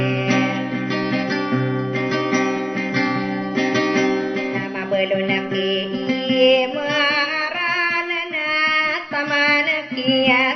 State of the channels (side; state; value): both; identical; correlation 1.00